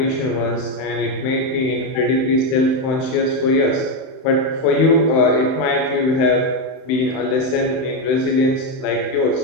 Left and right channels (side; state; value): right; late; 31 ms